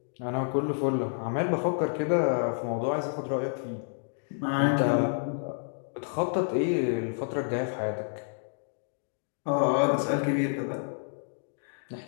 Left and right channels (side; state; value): right; silent; digital silence